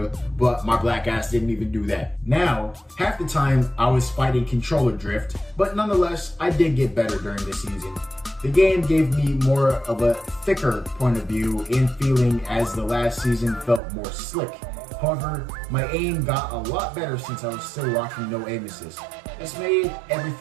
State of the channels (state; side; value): drops out; left; at 13.8 s